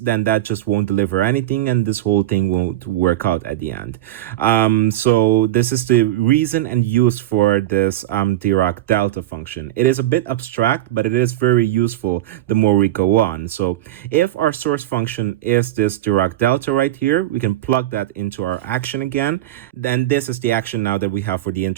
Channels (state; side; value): quieter; left; 14.6 dB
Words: that just won't deliver anything, and this whole thing won't work out at the end. So this is the reason and use for this Dirac delta function. It is a bit abstract, but it is very useful the more we go on. So if our source function is this Dirac delta right here, we can plug that into our action again. Then this is the action now that we have for the